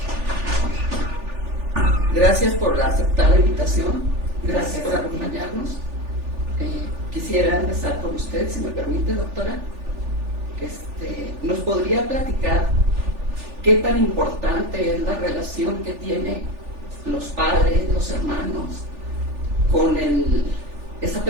Gracias por aceptar la invitación, gracias por acompañarnos. Quisiera empezar con usted, si me permite, doctora. ¿Nos podría platicar qué tan importante es la relación que tienen los padres, los hermanos, con esa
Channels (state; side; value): late; left; 3.4 ms